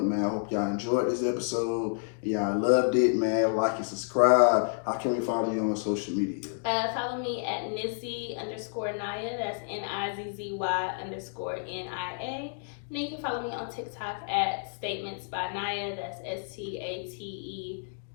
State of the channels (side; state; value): right; silent; digital silence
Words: man. I hope y'all enjoyed this episode. Y'all loved it, man. Like and subscribe. How can we follow you on social media? Follow me at Nizzy_Nia. That's NIZZY_NIA. And then you can follow me on TikTok at Statements by Nia. That's STATEMENTSBYNIA.